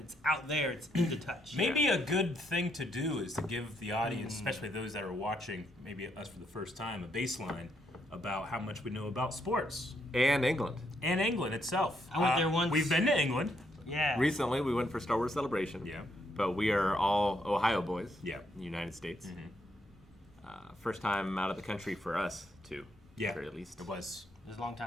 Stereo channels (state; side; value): normal; both; correlation 0.76